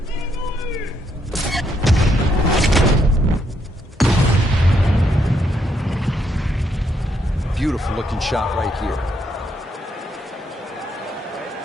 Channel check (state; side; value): normal; both; correlation 0.75